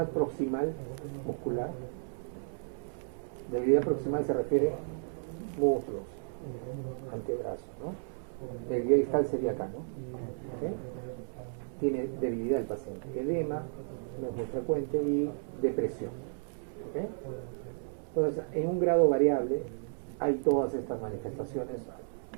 proximal muscular. Debilidad proximal se refiere a muslos, antebrazos, ¿no? Debilidad distal sería acá, ¿no? ¿Okay? Tiene debilidad el paciente, edema, no es muy frecuente, y depresión. ¿Okay? Entonces, en un grado variable hay todas estas manifestaciones,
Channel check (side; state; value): left; silent; 56 dB below the other